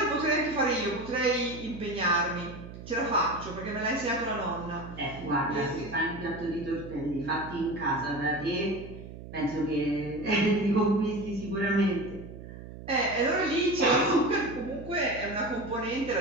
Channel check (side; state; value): right; noise; hum, 13 dB below the sound